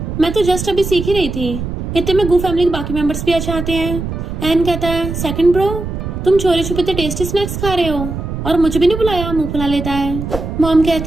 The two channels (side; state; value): right; noise; rumble, 6 dB below the sound